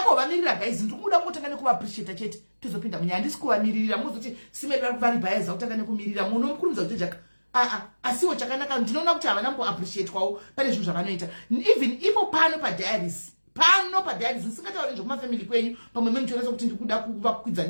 kuvamirira guys ndiri kuda kutanga nekuvaappreciate chete tozopinda munyaya handisi kuvamiririra muzoti simeri vari bhayaza kutanga nekumirira munomukurumidza kuti jaka asiwo chakanaka ndinoona kuti havana kuappreciate kwawo pane zvinhu zvavanoita even ipo pano padiaries nisingatauri nezvekumafamily kwenyu pamwe memuchionesa kuti ndiri kuda kuvakwidza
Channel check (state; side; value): inverted; both; correlation -1.00